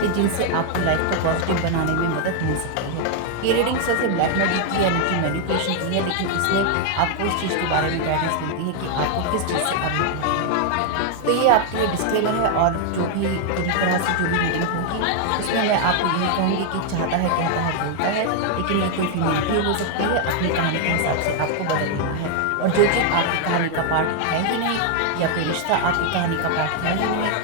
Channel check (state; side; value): different; both; correlation 0.00